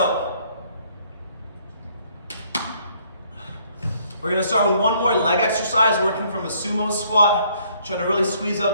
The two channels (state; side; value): inverted; both; correlation -0.64